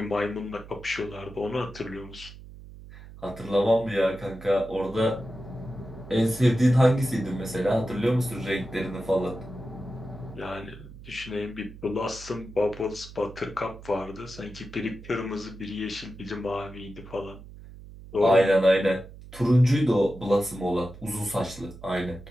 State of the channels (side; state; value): right; noise; hum, 17 dB below the sound